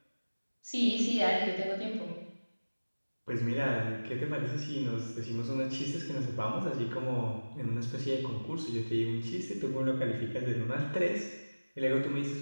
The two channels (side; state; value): both; inverted; correlation -1.00